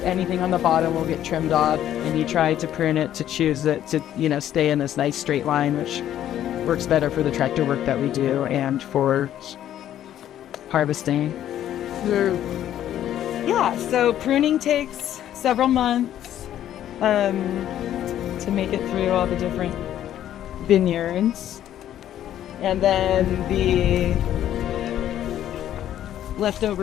anything on the bottom will get trimmed off, and you try to prune it to choose it to, stay in this nice straight line, which works better for the tractor work that we do and for harvesting. So pruning takes several months to make it through all the different vineyards, and then the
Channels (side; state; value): right; quieter; 11.5 dB